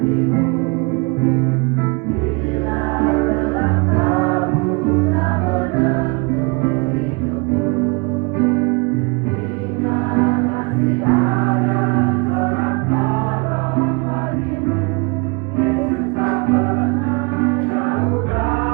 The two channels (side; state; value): left; quieter; 29.4 dB